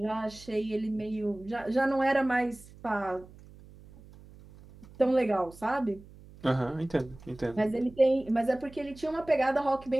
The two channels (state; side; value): noise; right; hum, 21 dB below the sound